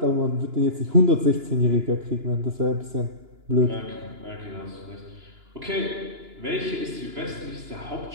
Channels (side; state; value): left; late; 2.9 ms